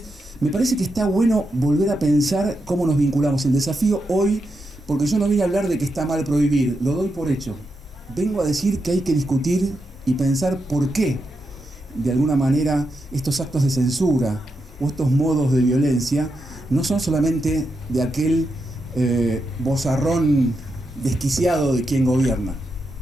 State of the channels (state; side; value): normal; both; correlation 0.85